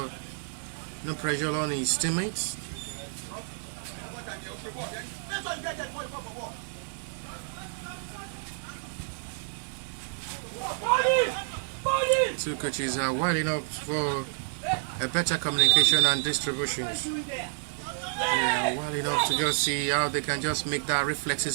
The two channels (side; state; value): left; silent; digital silence